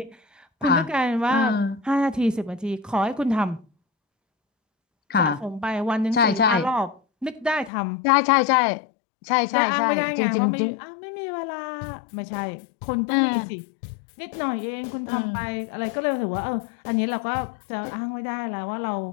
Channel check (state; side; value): drops out; right; at 7.7 s